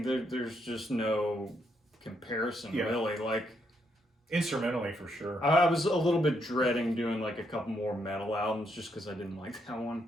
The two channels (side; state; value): both; normal; correlation 0.76